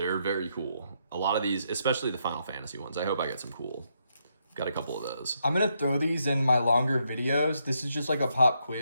very cool. A lot of these, especially the Final Fantasy ones. I hope I get some cool. Got a couple of those. I'm going to throw these in my longer videos. This is just like a pop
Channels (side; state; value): both; inverted; correlation -0.78